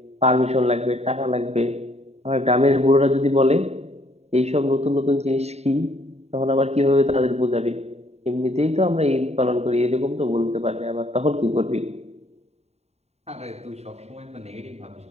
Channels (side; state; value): left; late; 0.31 ms